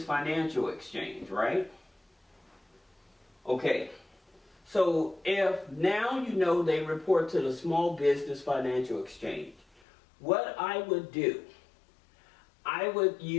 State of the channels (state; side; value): drops out; right; at 9.8 s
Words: Financial Exchange, right? Okay, so if now you know they report to the Small Business Financial Exchange, what I would do, I would